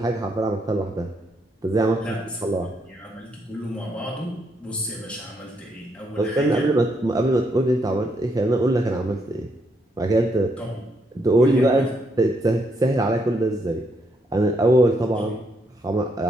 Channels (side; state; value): both; normal; correlation 0.76